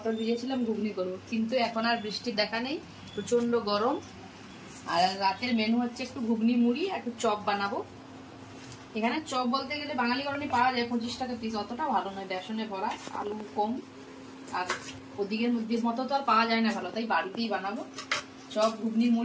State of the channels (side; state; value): both; identical; correlation 1.00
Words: ভিজিয়েছিলাম ঘুগনি করবো, কিন্তু এখন আর বৃষ্টির দেখা নেই, প্রচন্ড গরম। আর রাতের মেনু হচ্ছে একটু ঘুগনি মুড়ি আর একটু চপ বানাবো। এখানে চপ বলতে গেলে বাঙালি গরমে পাওয়া যায় 25 টাকা পিস, অতটা ভালো নয়, বেসনে ভরা, আলু কম, আর ওদিকের মতো তো আর পাওয়া যায় না ভালো, তাই বাড়িতেই বানাবো চপ ঘুগনি